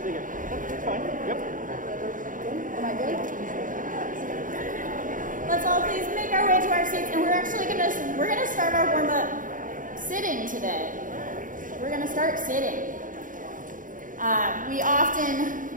Am I good? Let's all please make our way to our seats, and we're actually gonna start our warm-up sitting today. We're gonna start sitting.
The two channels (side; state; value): left; late; 0.39 ms